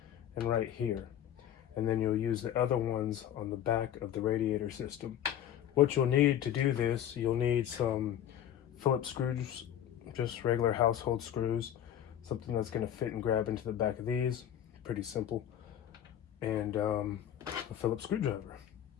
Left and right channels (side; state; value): right; quieter; 10.5 dB